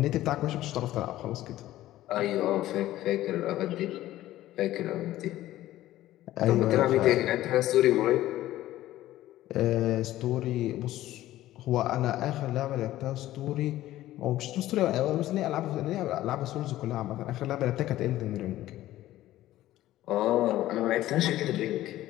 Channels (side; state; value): right; quieter; 14.8 dB